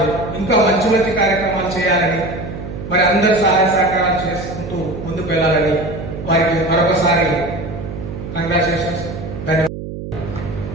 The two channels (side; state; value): right; noise; hum, 9 dB below the sound